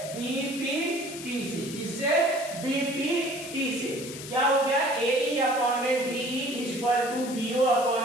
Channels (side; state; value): left; noise; hiss, 11 dB below the sound